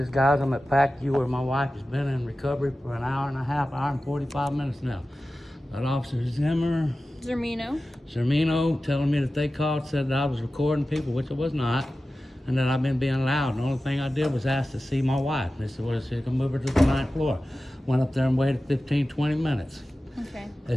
guys. I'm at P.A.C.U where my wife has been in recovery for an hour and a half, hour and 45 minutes now. That Officer Zermeno telling me that they called, said that I was recording people, which I was not, and that I've been being loud. The only thing I did was ask to see my wife. They said, well, she can move her to the 9th floor. Went up there and waited 15, 20 minutes. Okay.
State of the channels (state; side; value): normal; both; correlation 0.95